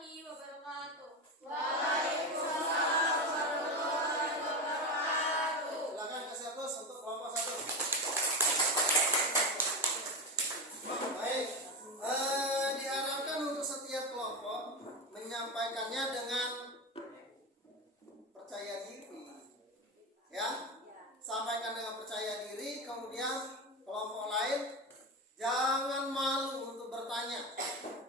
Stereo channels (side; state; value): both; normal; correlation 0.18